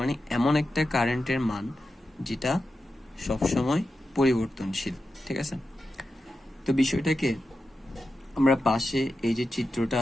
এমন একটা কারেন্টের মান যেটা সবসময় পরিবর্তনশীল। ঠিক আছে, তো বিষয়টাকে আমরা পাশে এই যে চিত্রটা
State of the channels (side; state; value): both; normal; correlation 0.90